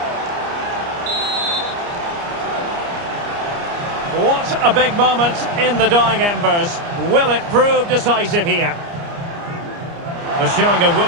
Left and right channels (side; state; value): left; late; 29 ms